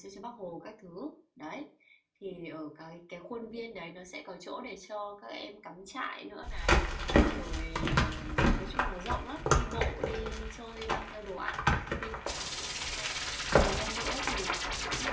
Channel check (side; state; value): both; identical; correlation 1.00